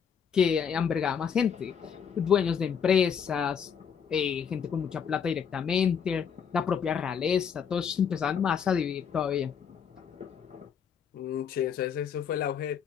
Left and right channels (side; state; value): right; quieter; 7.3 dB